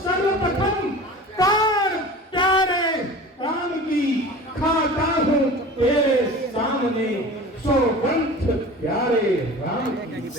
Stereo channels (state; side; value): normal; both; correlation 0.38